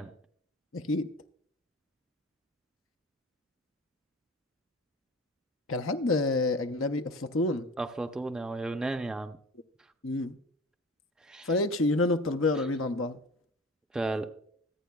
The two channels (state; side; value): normal; both; correlation 0.38